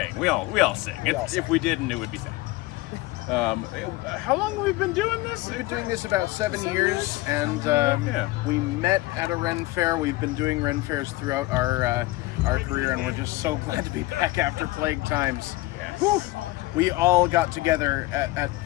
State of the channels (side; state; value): right; quieter; 19.5 dB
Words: We all sing. If we didn't, it would be sad. How long have we been doing this? We've been doing this about 7 years, and we met at a Ren Fair. We've been doing Ren Fairs throughout our career, and we're just so glad to be back after plague times. Yeah. We all got together at